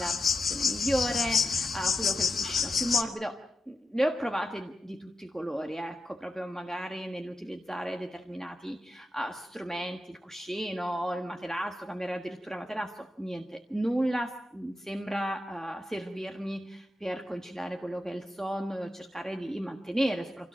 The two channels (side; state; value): both; normal; correlation 0.88